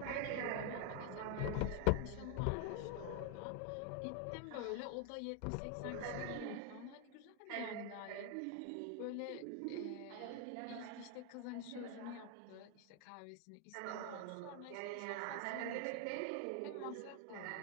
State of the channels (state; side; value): different; both; correlation 0.00